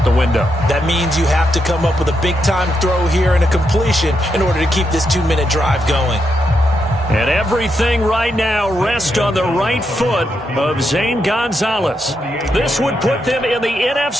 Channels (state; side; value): normal; both; correlation 0.82